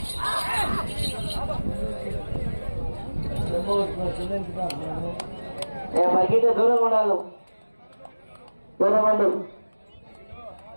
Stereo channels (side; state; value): both; inverted; correlation -1.00